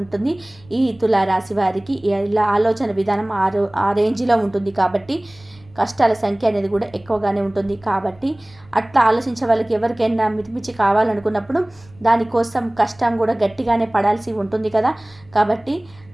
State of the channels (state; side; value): noise; right; rumble, 27 dB below the sound